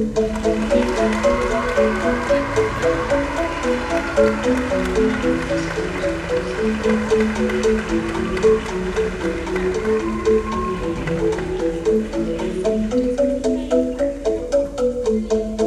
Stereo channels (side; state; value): both; identical; correlation 1.00